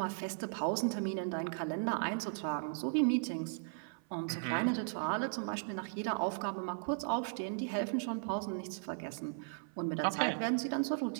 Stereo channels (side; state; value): left; silent; 53 dB below the other